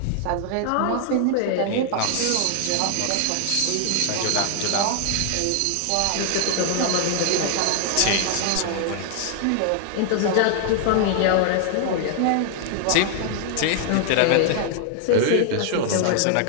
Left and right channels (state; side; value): different; both; correlation 0.00